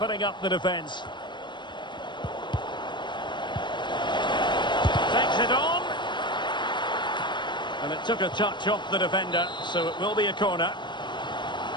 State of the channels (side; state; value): right; late; 0.22 ms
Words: up the defence. Takes it on. And it took a touch off the defender, so it will be a corner.